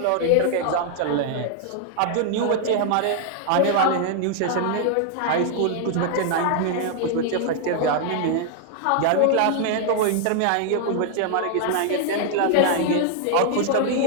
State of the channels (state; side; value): different; both; correlation 0.00